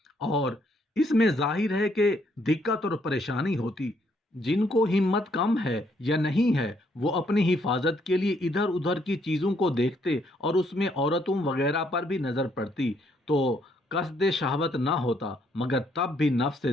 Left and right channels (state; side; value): normal; both; correlation 0.70